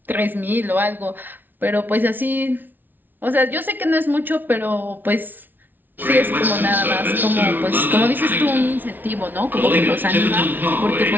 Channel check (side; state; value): left; late; 0.089 ms